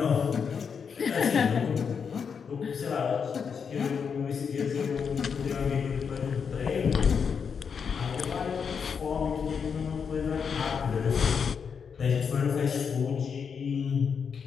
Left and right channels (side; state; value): right; quieter; 6.4 dB